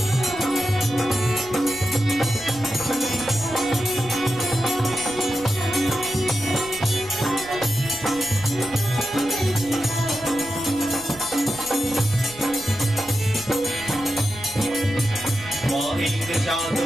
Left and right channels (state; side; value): noise; right; rumble, 19 dB below the sound